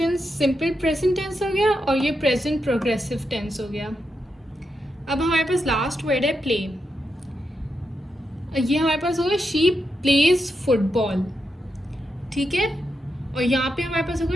सिंपल प्रेजेंट टेंस हो गया और ये प्रेजेंट प्रोग्रेसिव टेंस हो गया। अब हमारे पास लास्ट वर्ड है प्ले, ये हमारे पास होगा शी प्लेज फुटबॉल, ठीक है। और यहाँ पे हमारे पास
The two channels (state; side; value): normal; both; correlation 0.85